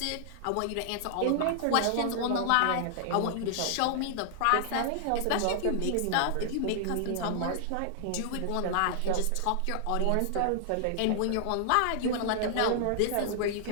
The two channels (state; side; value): different; both; correlation -0.01